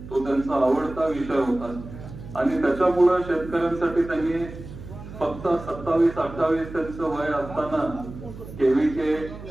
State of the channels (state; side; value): noise; right; hum, 13 dB below the sound